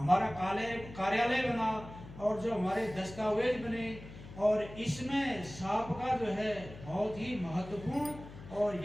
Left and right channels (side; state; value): left; noise; hum, 15 dB below the sound